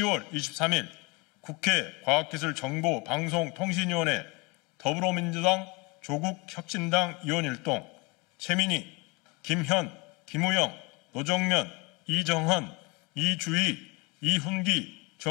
23일 국회 과학기술정보방송통신위원회 더불어민주당 조국혁신당 의원일동 최민희, 김현, 김우영, 노정면, 이정헌, 이주희, 이훈기,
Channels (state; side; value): quieter; right; 27.3 dB